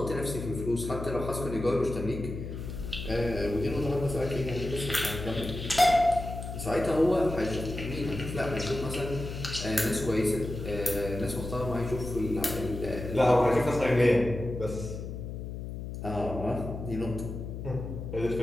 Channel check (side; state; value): left; noise; hum, 7 dB below the sound